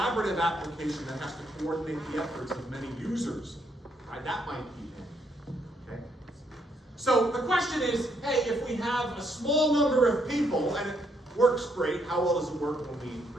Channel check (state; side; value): normal; both; correlation 0.74